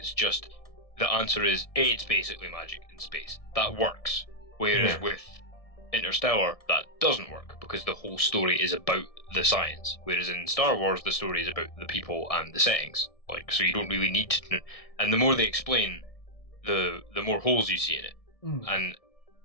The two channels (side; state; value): right; late; 1.7 ms